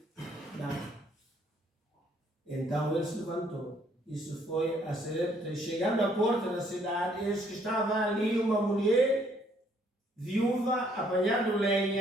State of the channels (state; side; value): normal; both; correlation 0.66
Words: Não. Então ele se levantou. Isso foi a Sarepta. Chegando à porta da cidade, eis que estava ali uma mulher viúva apanhando